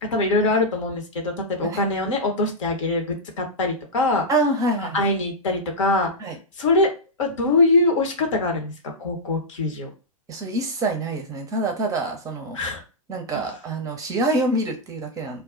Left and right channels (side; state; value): both; normal; correlation -0.09